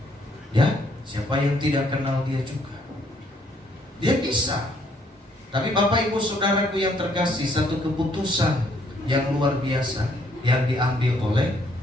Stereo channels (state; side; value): normal; both; correlation 0.68